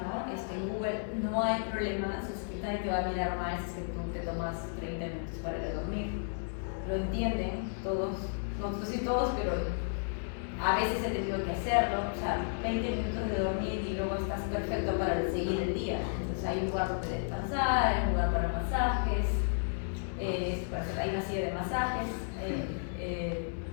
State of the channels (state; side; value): silent; right; 56 dB below the other